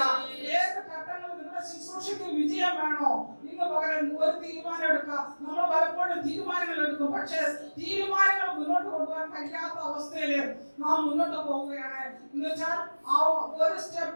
ഏത് ഘട്ടങ്ങളിൽ നിങ്ങളുടെ ശുശ്രൂഷയ്ക്ക് വിജയം വേണോ, ഇന്ന് പകരം ഒരു തീരുമാനം എടുക്കുക. നമ്മൾ പലപ്പോഴും തീരുമാനങ്ങൾ എടുക്കും, പക്ഷെ തീരുമാനങ്ങൾ മുന്നോട്ട് കൊണ്ടുപോകാൻ കഴിയാത്ത അവസ്ഥയില് നാം മുന്നോട്ട് പോവുകയാണ്. എന്ന് വെച്ചാൽ ആ ഒരു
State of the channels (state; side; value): inverted; both; correlation -1.00